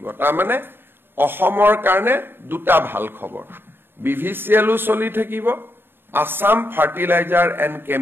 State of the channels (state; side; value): late; left; 0.10 ms